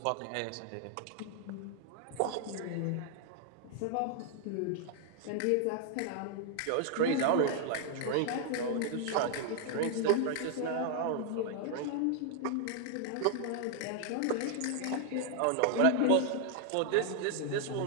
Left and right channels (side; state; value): both; different; correlation 0.00